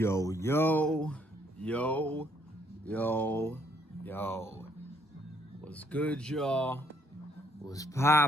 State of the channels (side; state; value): both; normal; correlation 0.68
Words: yo, yo, yo. What's good, y'all? What's